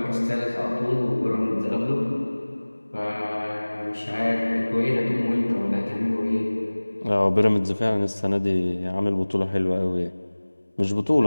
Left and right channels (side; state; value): both; inverted; correlation -1.00